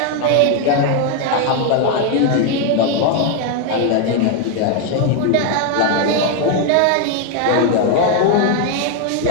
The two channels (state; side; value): different; both; correlation 0.01